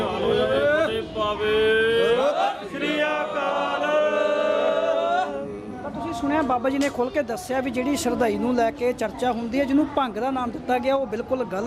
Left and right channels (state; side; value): identical; both; correlation 1.00